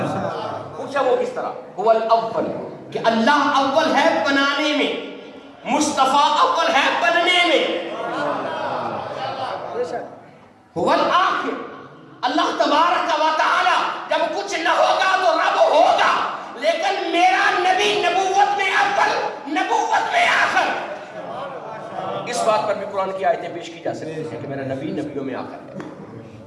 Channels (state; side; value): identical; both; correlation 1.00